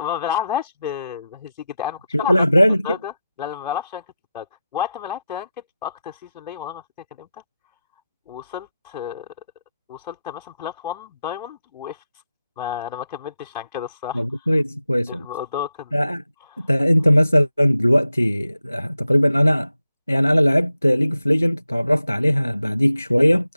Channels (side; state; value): both; inverted; correlation -0.90